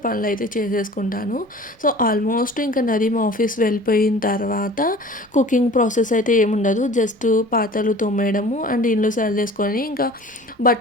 పనులైతే చేసేసుకుంటాను. సో ఆల్మోస్ట్ ఇంకా నదీం ఆఫీస్ వెళ్ళిపోయిన తర్వాత కుకింగ్ ప్రాసెస్ అయితే ఏముండదు. జస్ట్ పాత్రలు తోమేయడము అండ్ ఇల్లు సర్దేసుకొని ఇంకా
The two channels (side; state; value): both; normal; correlation 0.44